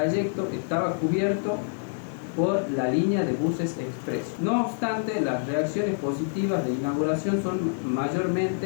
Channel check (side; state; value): right; silent; digital silence